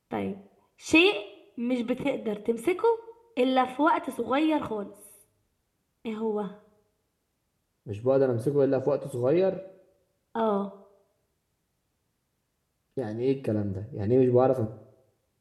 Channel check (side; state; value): both; identical; correlation 1.00